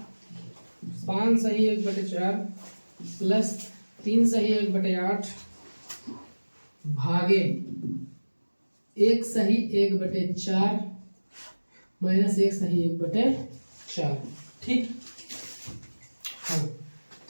5 सही 1/4 प्लस 3 सही 1/8 भागे 1 सही 1/4 माइनस 1 सही 1/4, ठीक। हाँ,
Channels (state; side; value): inverted; both; correlation -1.00